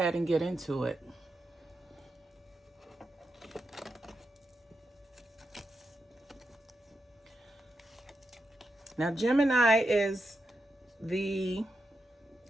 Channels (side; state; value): both; normal; correlation 0.87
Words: and get into it. Now, Gemini is the